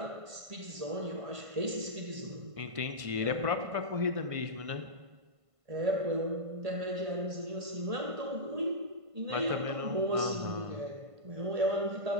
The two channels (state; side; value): late; left; 1.5 ms